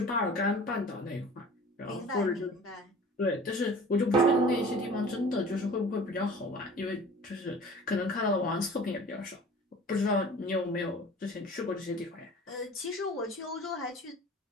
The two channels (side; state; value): both; normal; correlation 0.43